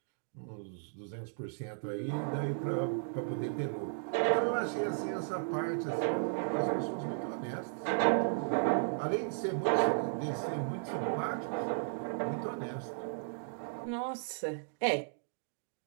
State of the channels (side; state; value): left; silent; digital silence